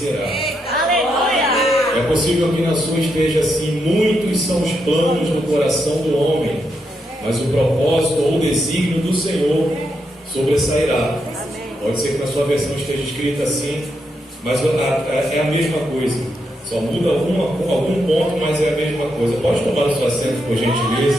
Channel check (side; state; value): both; normal; correlation 0.81